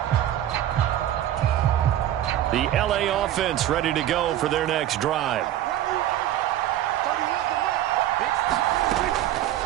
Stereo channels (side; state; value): left; quieter; 12.5 dB